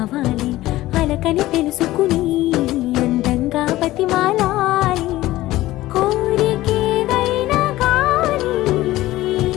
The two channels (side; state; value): right; quieter; 16.6 dB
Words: అలకని తెలుసుకుని అందంగా బతిమాలాలి కోరికేదైనా కానీ